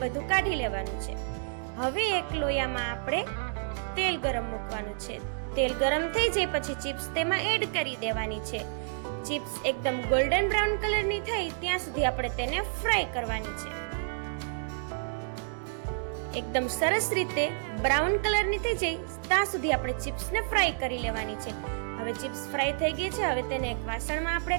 બધું કાઢી લેવાનું છે. હવે એક લોયામાં આપણે તેલ ગરમ મૂકવાનું છે. તેલ ગરમ થઈ જાય પછી ચિપ્સ તેમાં એડ કરી દેવાની છે. ચિપ્સ એકદમ ગોલ્ડન બ્રાઉન કલરની થાય ત્યાં સુધી આપણે તેને ફ્રાય કરવાની છે. એકદમ સરસ રીતે બ્રાઉન કલરની થઈ જાય ત્યાં સુધી આપણે ચિપ્સને ફ્રાય કરી લેવાની છે. હવે ચિપ્સ ફ્રાય થઈ ગઈ છે. હવે તેને એક વાસણમાં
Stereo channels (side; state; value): left; silent; digital silence